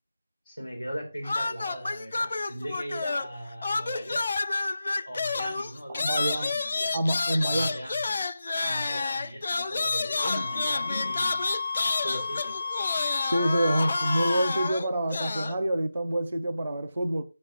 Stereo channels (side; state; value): both; inverted; correlation -0.91